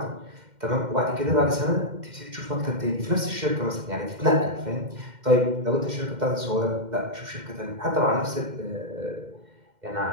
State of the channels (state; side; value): late; left; 2.1 ms